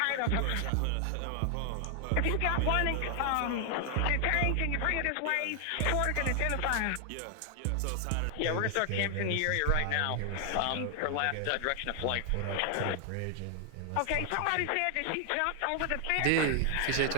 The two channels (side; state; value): both; different; correlation 0.00